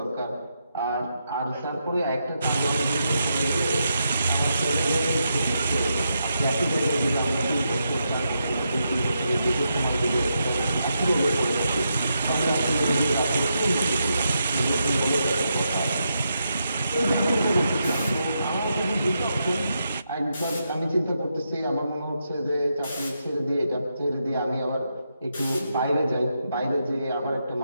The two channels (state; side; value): inverted; both; correlation -0.83